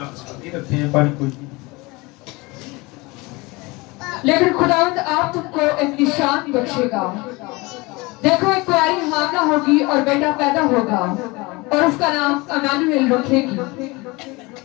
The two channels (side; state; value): right; quieter; 24.2 dB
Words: लेकिन खुदावंद आप तुमको एक निशान बख्शेगा। देखो एक कुंवारी हामला होगी और बेटा पैदा होगा और उसका नाम इम्मानुएल रखेगी।